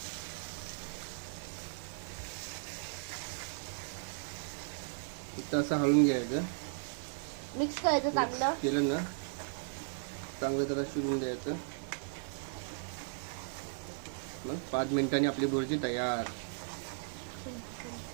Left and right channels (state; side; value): silent; left; 54 dB below the other